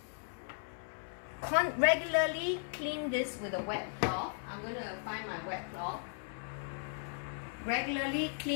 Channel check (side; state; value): right; silent; 53 dB below the other